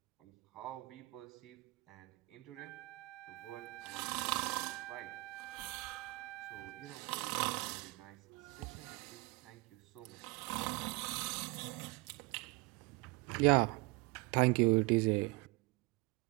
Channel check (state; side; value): quieter; left; 24.4 dB